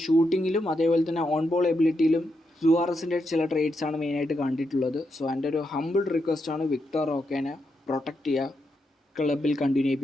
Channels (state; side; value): normal; both; correlation 0.83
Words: ഷൂട്ടിങ്ങിലും അതേപോലെ തന്നെ ഓൺ ബോൾ എബിലിറ്റിയിലും സുവാറസിൻ്റെ ചില ട്രേഡ്സാണ് മെയിനായിട്ട് കണ്ടിട്ടുള്ളത്. സോ എൻ്റെ ഒരു ഹമ്പിൾ റിക്വസ്റ്റാണ് വിക്ടർ റോക്കിനെ പ്രൊട്ടക്റ്റ് ചെയ്യുക, ക്ലബിൽ കണ്ടിന്യൂ